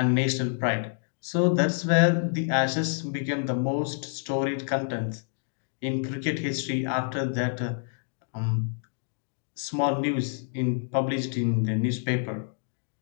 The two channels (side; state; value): right; silent; digital silence